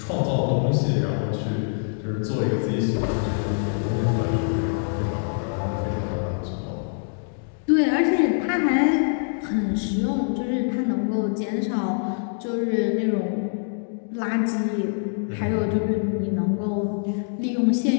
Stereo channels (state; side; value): silent; right; digital silence